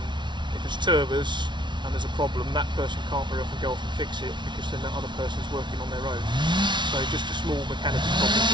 If it's turbers and there's a problem, that person can't very often go off and fix it, because then that other person's working on their own. So just a small mechanical problem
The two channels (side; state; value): left; late; 0.23 ms